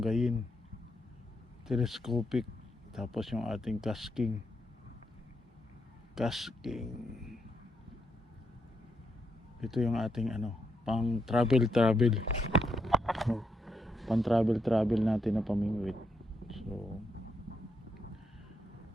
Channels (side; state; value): both; normal; correlation 0.80